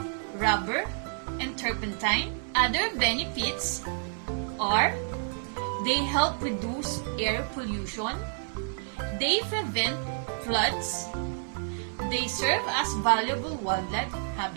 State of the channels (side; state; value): left; silent; 58 dB below the other